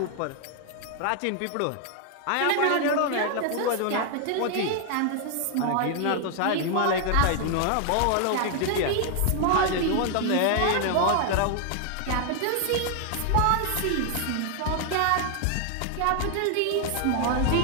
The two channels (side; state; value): both; different; correlation 0.00